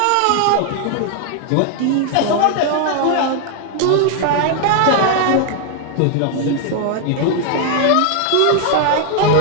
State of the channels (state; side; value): different; both; correlation 0.00